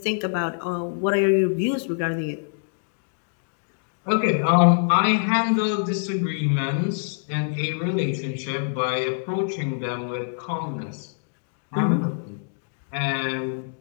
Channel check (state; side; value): silent; right; digital silence